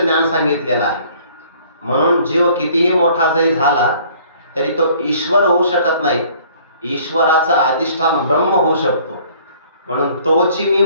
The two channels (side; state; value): both; inverted; correlation -0.56